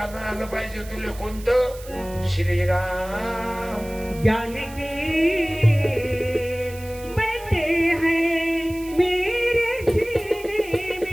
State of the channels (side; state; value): right; noise; hiss, 19 dB below the sound